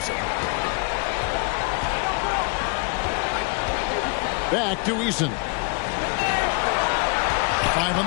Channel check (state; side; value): quieter; right; 32.9 dB